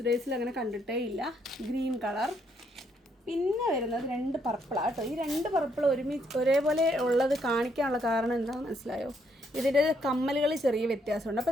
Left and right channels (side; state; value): both; normal; correlation 0.73